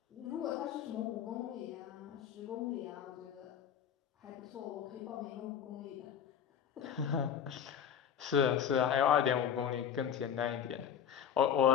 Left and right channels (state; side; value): quieter; right; 8.6 dB